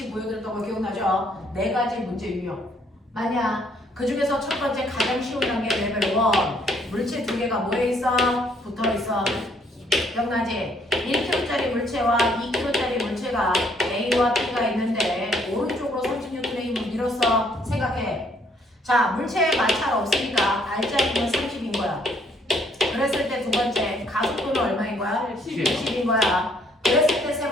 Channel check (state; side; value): normal; both; correlation 0.66